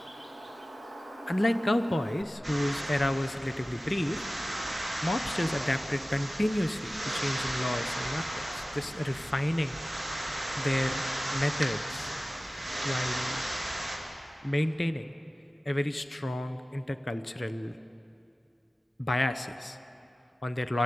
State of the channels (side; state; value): both; normal; correlation 0.97